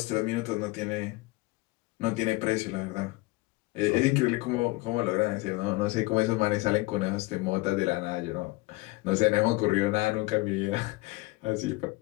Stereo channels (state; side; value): quieter; right; 22.1 dB